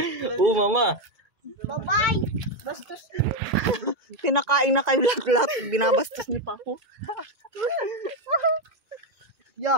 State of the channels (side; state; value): left; late; 2.0 ms